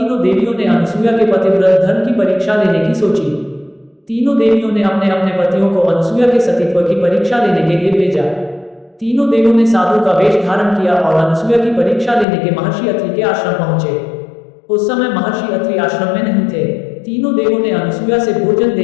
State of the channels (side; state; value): right; drops out; at 12.2 s